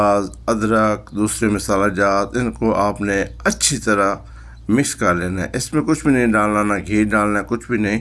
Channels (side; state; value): both; identical; correlation 1.00